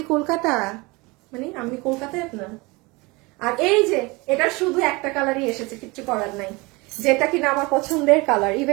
কলকাতা, মানে আমি কলকাতায় আপনার। আর এই যে এটা শুধু একটা কালারই এসেছে, কিচ্ছু করার নাই, যেটা কিনা আমার পছন্দের কালার।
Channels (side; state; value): left; quieter; 25.0 dB